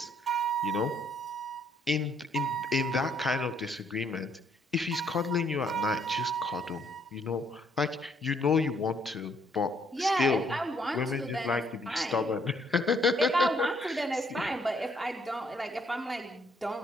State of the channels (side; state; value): both; normal; correlation 0.68